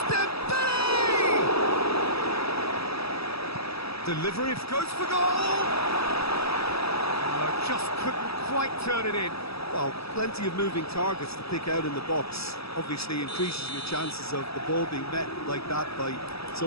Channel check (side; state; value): right; late; 0.77 ms